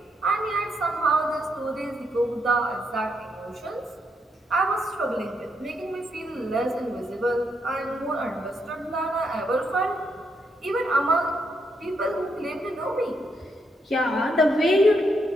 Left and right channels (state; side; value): normal; both; correlation 0.78